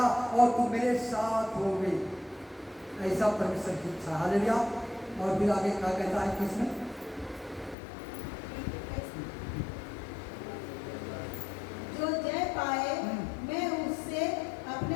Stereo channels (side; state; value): right; drops out; at 7.8 s